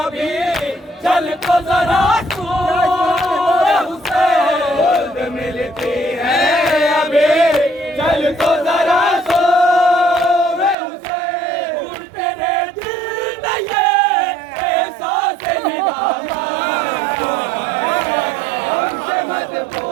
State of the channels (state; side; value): drops out; left; at 10.8 s